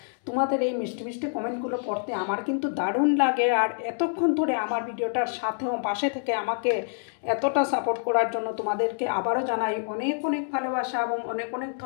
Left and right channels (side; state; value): right; silent; digital silence